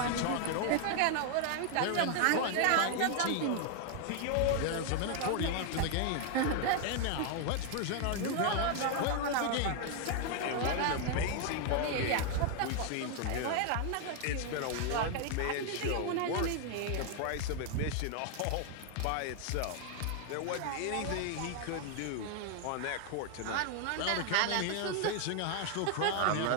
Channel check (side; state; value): both; different; correlation 0.00